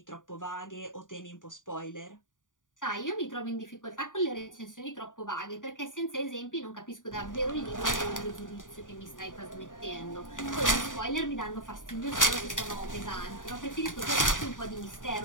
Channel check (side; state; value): right; late; 0.88 ms